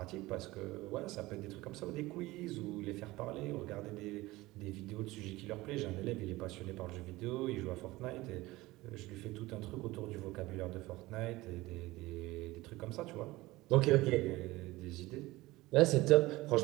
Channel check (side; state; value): left; quieter; 19.4 dB